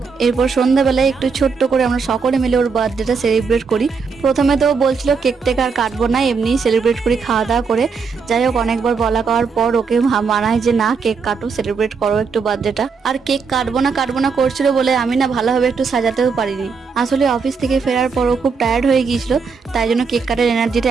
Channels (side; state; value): left; quieter; 5.3 dB